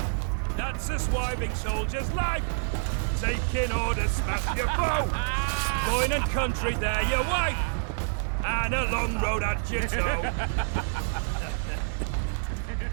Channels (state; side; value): silent; left; digital silence